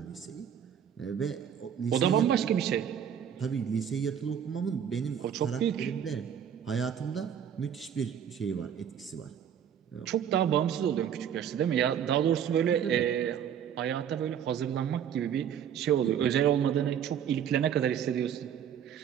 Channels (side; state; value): left; quieter; 8.8 dB